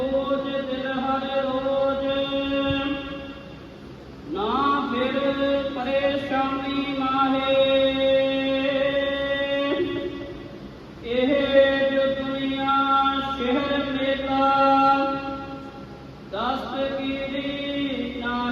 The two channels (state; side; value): identical; both; correlation 1.00